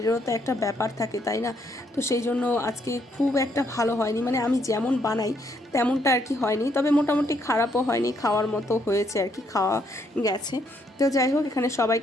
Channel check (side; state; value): both; normal; correlation 0.72